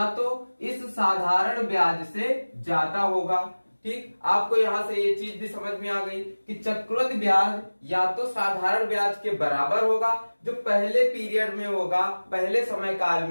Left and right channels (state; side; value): inverted; both; correlation -1.00